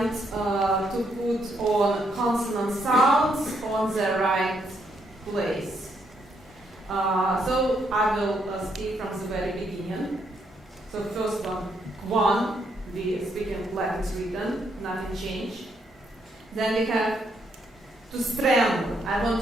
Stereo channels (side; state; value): both; normal; correlation 0.75